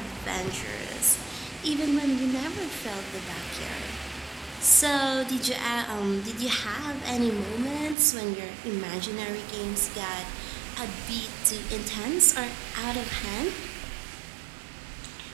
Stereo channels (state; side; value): drops out; left; at 8.0 s